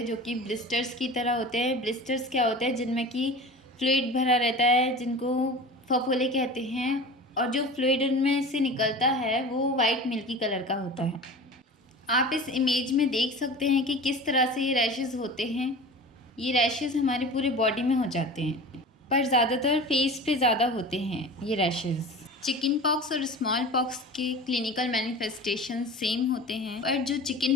जो कि ब्लिस्टर्स की तरह होते हैं। ब्लिस्टर्स क्या होते हैं? जिनमें कि फ्लूइड भरा रहता है, जिनको फफोले कहते हैं, और जो फ्लूइड उनमें से निकलता है वो वाइट मिल्की कलर का होता है। आप इस इमेज में देख सकते हैं कि किस तरह से ये रैशेस होते हैं। ये रैशेस हमारे पूरे बॉडी में हो जाते हैं, पर ज़्यादातर फेस पे ज़्यादा होते हैं ये रैशेस। चिकन पॉक्स और स्मॉल पॉक्स के क्लिनिकल मैनिफेस्टेशन सेम होते हैं, पर जो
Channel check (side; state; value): both; normal; correlation 0.36